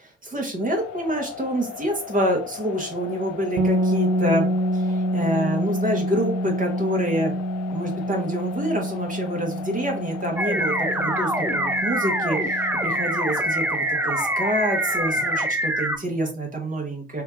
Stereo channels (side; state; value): both; normal; correlation 0.47